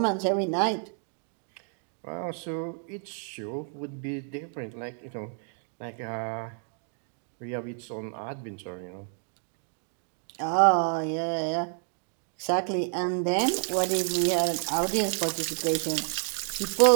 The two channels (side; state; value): left; silent; 58 dB below the other